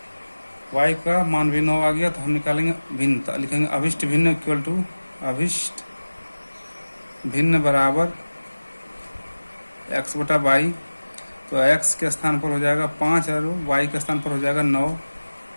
y का मान भी 9 आ गया। तो हम निकालेंगे भिन्नता, लिखेंगे अभिष्ट भिन्न इक्वल टू अभिष्ट भिन्न बराबर x बटा वाई। तो x के स्थान पर हो जाएगा 5 और y के स्थान पर हो जाएगा 9,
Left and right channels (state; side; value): inverted; both; correlation -1.00